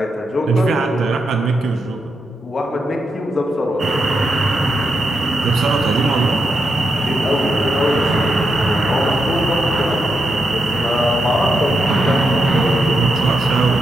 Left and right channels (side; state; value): both; normal; correlation 0.84